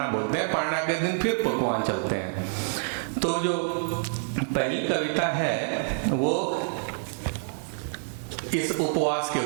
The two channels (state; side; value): silent; left; digital silence